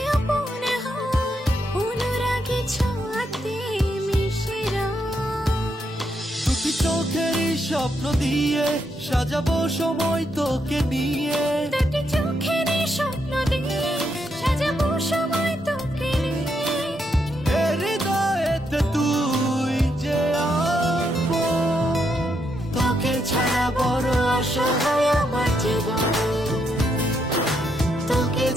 আপন হয় অনুরাগী ছোঁয়াতে মিশে দুটি চোখের স্বপ্ন দিয়ে সাজাবো সময় তোকে নিয়ে দুটি চোখের স্বপ্ন দিয়ে সাজাবো সময় তোকে নিয়ে হৃদয়েতে তুই যে আপন তোকে ছাড়া বড় অসহায় আমার জীবন তোকে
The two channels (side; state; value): both; normal; correlation 0.79